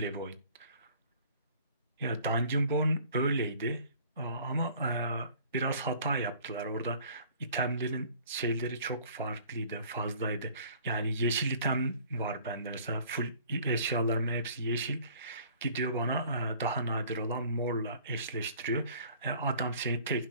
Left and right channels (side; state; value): both; inverted; correlation -0.52